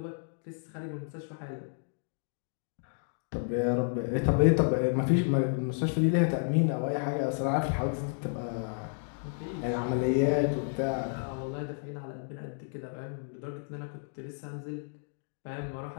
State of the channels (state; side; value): silent; right; digital silence